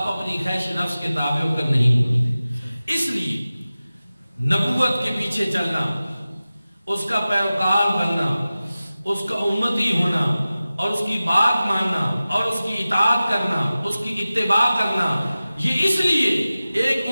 اپنی خواہش نفس کے تابع ہو کر نہیں بولتے۔ اس لیے نبوت کے پیچھے چلنا، اس کا پیروکار بننا، اس کا امتی ہونا اور اس کی بات ماننا اور اس کی اطاعت کرنا، اس کی اتباع کرنا، یہ اس لیے ایک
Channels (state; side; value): inverted; both; correlation -0.96